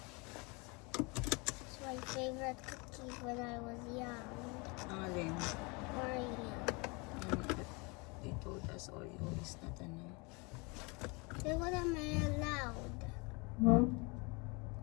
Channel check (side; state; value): right; quieter; 29.1 dB